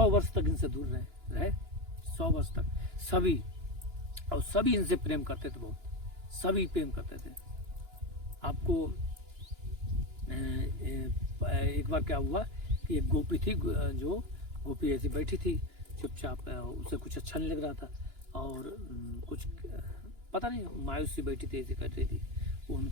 वर्ष तक इनसे दूर रहे 100 वर्ष तक सभी, और सभी इनसे प्रेम करते थे, बहुत सभी प्रेम करते थे। आपको एक बार क्या हुआ कि एक गोपी थी, जो गोपी ऐसी बैठी थी चुपचाप, उसे कुछ अच्छा नहीं लग रहा था, और कुछ पता नहीं मायूस सी बैठी थी, ऐसे कर रही थी।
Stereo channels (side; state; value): left; late; 2.9 ms